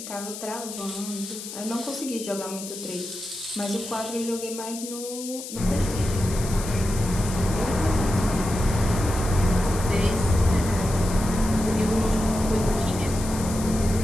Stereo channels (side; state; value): left; noise; hiss, 10 dB below the sound